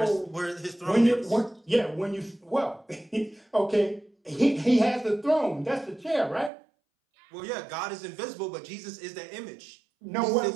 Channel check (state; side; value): drops out; left; at 6.5 s